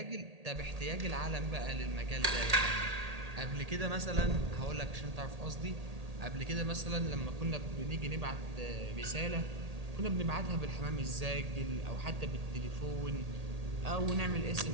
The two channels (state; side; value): late; left; 1.8 ms